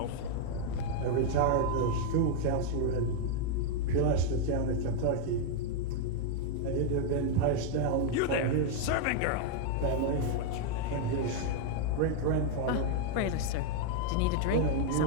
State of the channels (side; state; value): both; different; correlation 0.00